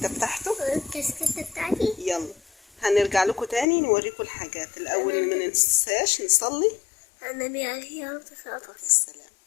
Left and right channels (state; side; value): drops out; right; at 3.7 s